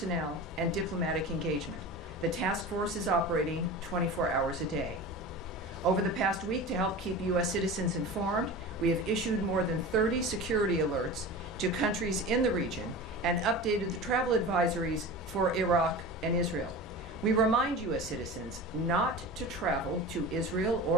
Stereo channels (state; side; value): normal; both; correlation 0.32